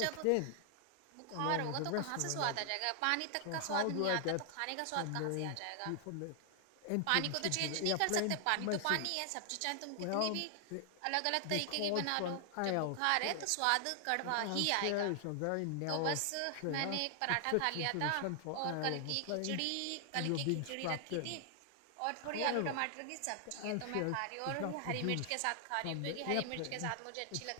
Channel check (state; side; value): different; both; correlation 0.00